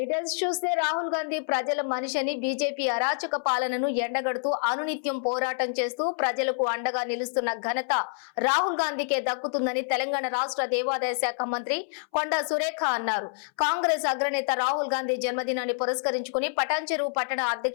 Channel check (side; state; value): right; silent; 60 dB below the other